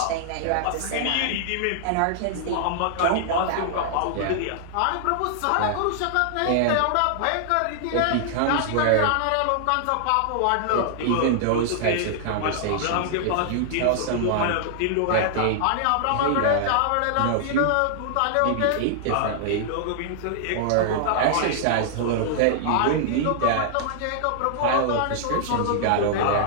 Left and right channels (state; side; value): different; both; correlation -0.01